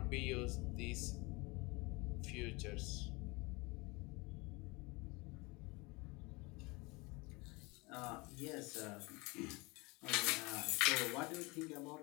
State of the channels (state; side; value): quieter; right; 25.5 dB